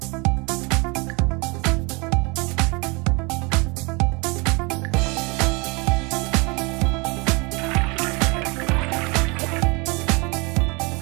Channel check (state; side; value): quieter; left; 28.5 dB